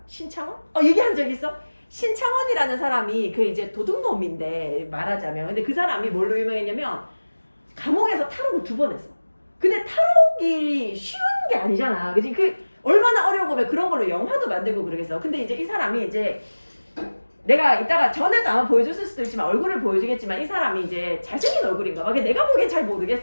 신창원? 얘기한 적 있어? 신창원이라는 사람이 이제 도둑놈인데 말하자면, 근데 그 사람이 뭘로 유명했냐면 감옥에서 탈옥을 2번 했어. 근데 탈옥이 쉬운 게 아니잖아. 그치? 얼마나 어려운 거면 그런 걸로 영화도 만들고 그러겠어. 근데 이제 이 사람이 이제 내가 이따가 전에도 아마 보여줬을 수도 있지만 얼굴을 보여주겠지만 이 사람이 이제 잘생긴 얼굴인가 봐. 내가 보기엔 잘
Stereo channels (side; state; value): both; inverted; correlation -1.00